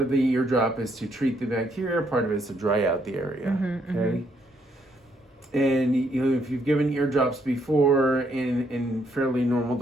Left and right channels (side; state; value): both; normal; correlation 0.72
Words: of the eardrop is to treat the bacteria, part of it is to dry out the area. Okay. And if you've given eardrops before in fairly normal